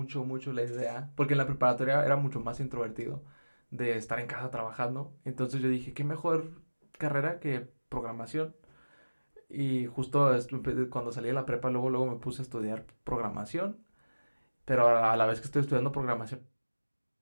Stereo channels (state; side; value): inverted; both; correlation -1.00